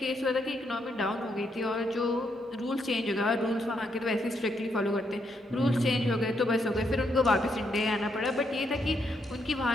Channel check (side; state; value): both; normal; correlation 0.77